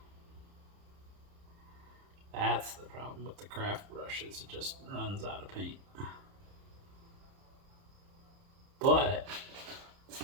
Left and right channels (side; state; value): left; late; 30 ms